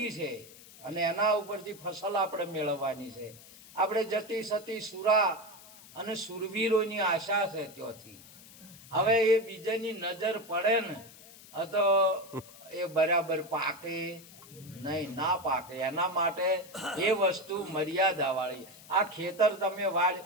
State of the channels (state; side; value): noise; left; hiss, 20 dB below the sound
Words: છે અને એના ઉપરથી ફસલ આપણે મેળવવાની છે. આપણે જતી સતી સુરા અને સુરવીરોની આશા છે ત્યાંથી. હવે એ બીજાની નજર પડે ને તો એ બરાબર પાકે નહીં, ના પાકે. એના માટે એ વસ્તુ મર્યાદા વાળી. આ ખેતર તમે